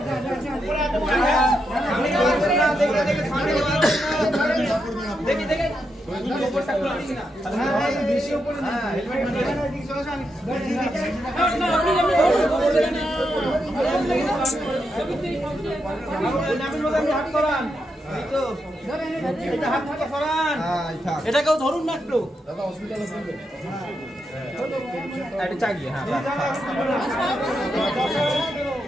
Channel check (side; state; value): both; normal; correlation 0.83